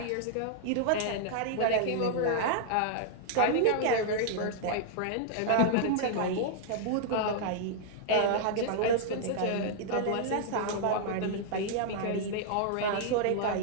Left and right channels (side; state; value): both; different; correlation -0.01